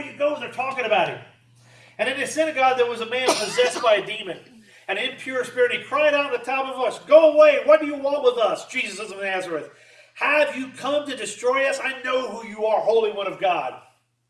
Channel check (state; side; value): identical; both; correlation 1.00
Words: you go, they're talking about him. And in the synagogue, there was a man possessed by a demon, an impure spirit. He cried out at the top of a voice, "Go away! What do you want with us, Jesus of Nazareth? Have you come to destroy us? I know who you are, Holy One of God."